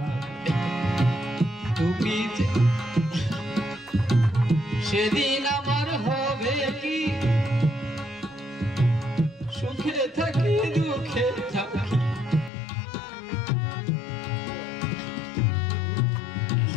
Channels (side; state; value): right; drops out; at 12.5 s